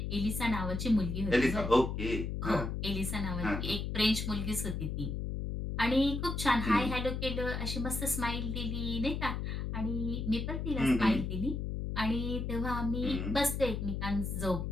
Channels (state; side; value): noise; left; hum, 3 dB below the sound